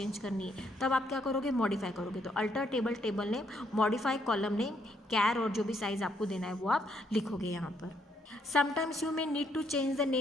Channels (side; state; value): both; normal; correlation 0.72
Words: करनी है, तब आप क्या करोगे, मॉडिफाई करोगे। तो alter table name, modify column name, char और जो भी साइज़ आपको देना है वो आप लिखोगे यहाँ पर। Sometimes you may need to change the